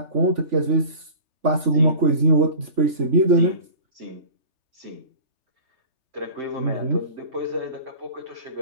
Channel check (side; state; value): left; late; 3.4 ms